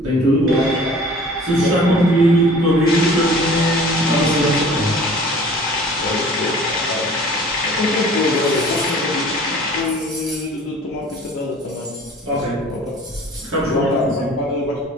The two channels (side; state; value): both; normal; correlation 0.47